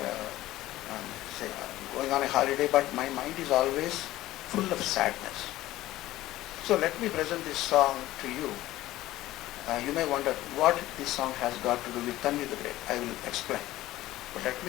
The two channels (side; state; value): right; quieter; 16.0 dB